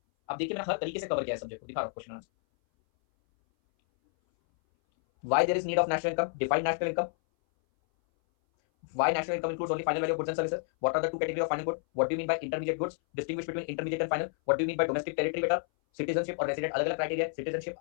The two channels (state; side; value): silent; right; 58 dB below the other